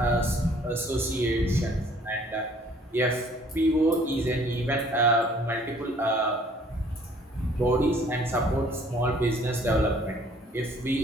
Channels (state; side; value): normal; both; correlation 0.57